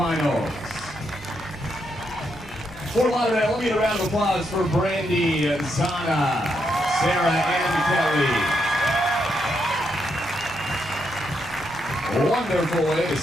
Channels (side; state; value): both; normal; correlation 0.80